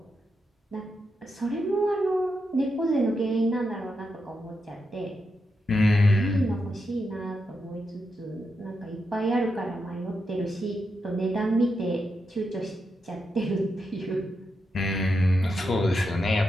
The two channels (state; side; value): normal; both; correlation 0.85